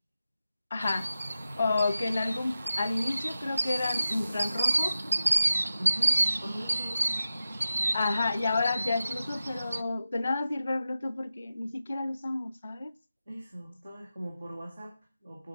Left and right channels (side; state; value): both; inverted; correlation -0.93